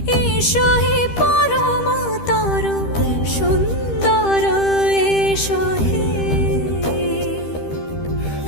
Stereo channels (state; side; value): late; right; 13 ms